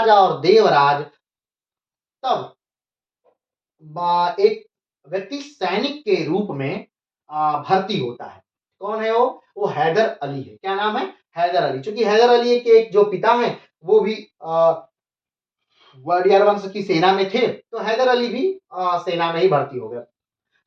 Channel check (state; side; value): identical; both; correlation 1.00